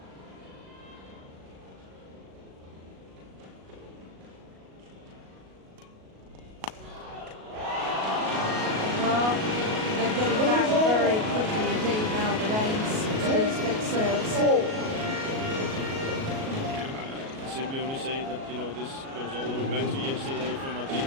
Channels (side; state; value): left; late; 37 ms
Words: Well, they're getting back very quickly indeed now, the Danes, to these flick serves. 4. Simply only say that, you know, this goes all the way back to yesterday from Martina.